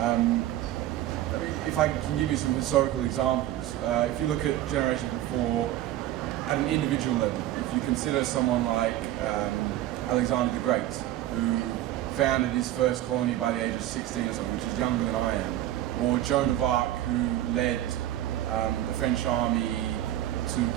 If I can give you some historical examples, if you look at generations before, at an individual level, if you consider someone like Alexander the Great, who founded his first colony by the age of 16 or something, which is younger than I am, or Joan of Arc, who led the French army to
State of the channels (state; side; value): quieter; left; 13.6 dB